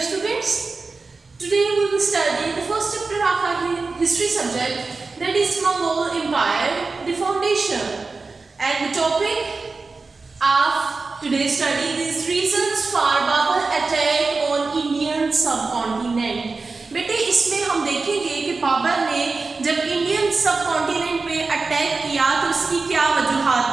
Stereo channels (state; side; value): quieter; left; 4.0 dB